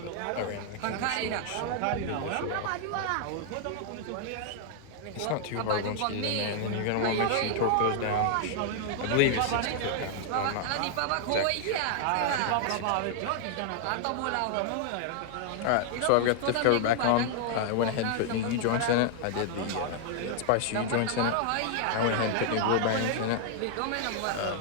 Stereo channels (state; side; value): different; both; correlation 0.00